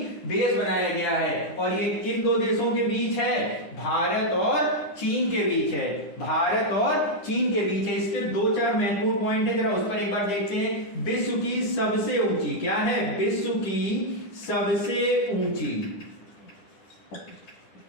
बेस बनाया गया है। और ये किन 2 देशों के बीच है? भारत और चीन के बीच है। भारत और चीन के बीच है। इसके 2-4 महत्वपूर्ण पॉइंट है, जरा उस पर एक बार देखते हैं। विश्व की सबसे ऊंची, क्या है? विश्व की सबसे ऊंची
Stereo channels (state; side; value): late; right; 10 ms